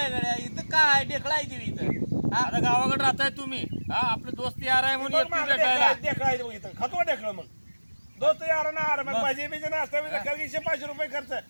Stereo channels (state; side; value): inverted; both; correlation -1.00